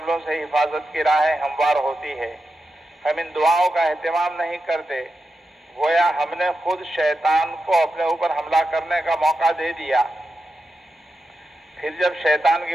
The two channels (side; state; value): both; normal; correlation 0.89